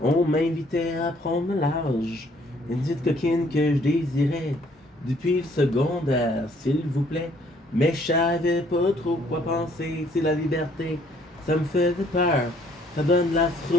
On m'invitait à prendre le large. Une petite coquine que je désirais depuis le secondaire, s'il vous plaît. Mais je savais pas trop quoi penser. C'est la liberté, ça me faisait peur. Ça donne la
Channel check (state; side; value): normal; both; correlation 0.63